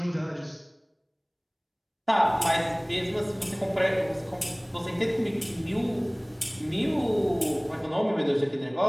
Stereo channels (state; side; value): identical; both; correlation 1.00